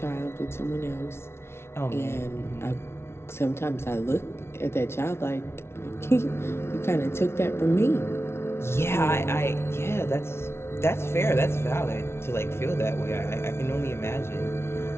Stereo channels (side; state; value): right; late; 0.12 ms